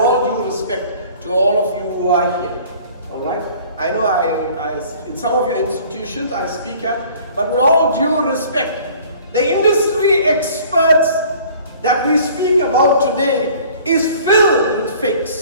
due respect to all of you who are here, all right? I know in some of your institutions I speak at, but with all due respect, the industry experts that we speak about today is filled with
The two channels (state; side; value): inverted; both; correlation -0.51